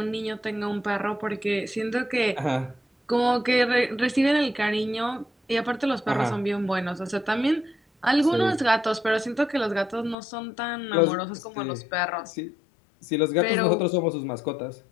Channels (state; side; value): drops out; right; at 10.2 s